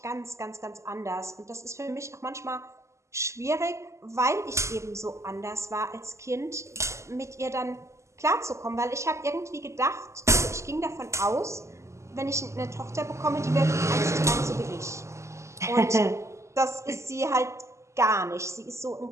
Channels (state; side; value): late; left; 0.14 ms